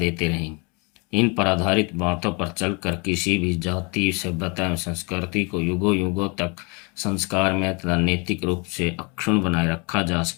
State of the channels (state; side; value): quieter; right; 31.1 dB